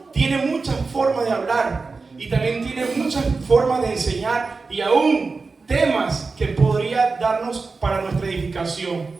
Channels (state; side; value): quieter; left; 4.2 dB